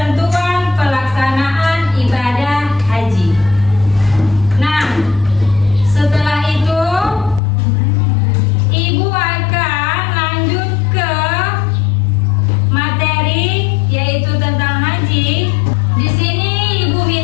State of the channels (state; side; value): drops out; right; at 7.4 s